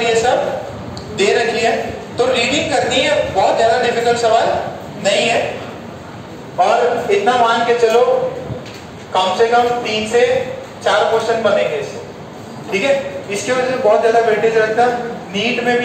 ये सब दे रखी है, तो रीडिंग करनी है, बहुत ज्यादा डिफिकल्ट सवाल नहीं है। और इतना मान के चलो कम से कम 3 से 4 क्वेश्चन बनेंगे इससे, ठीक है। इसकी वजह से बहुत ज्यादा वेटेज रखता है। नीट में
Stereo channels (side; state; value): both; identical; correlation 1.00